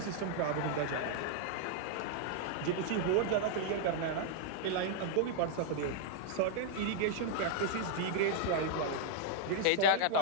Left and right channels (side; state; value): both; different; correlation 0.00